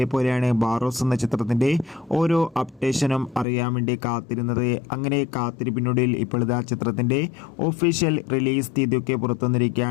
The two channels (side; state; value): right; drops out; at 3.5 s